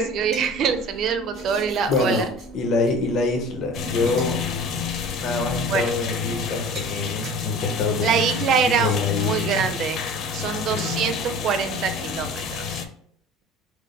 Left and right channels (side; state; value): both; normal; correlation 0.41